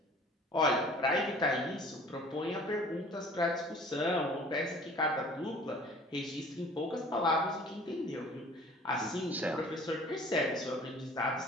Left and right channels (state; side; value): normal; both; correlation 0.49